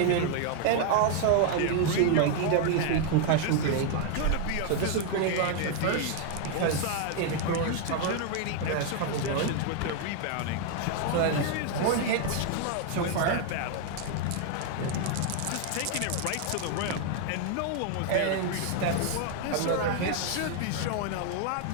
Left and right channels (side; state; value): both; different; correlation 0.01